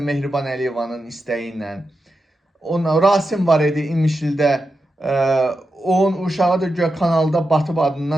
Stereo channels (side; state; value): both; normal; correlation 0.89